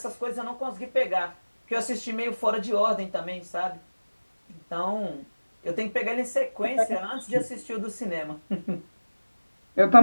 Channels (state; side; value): inverted; both; correlation -1.00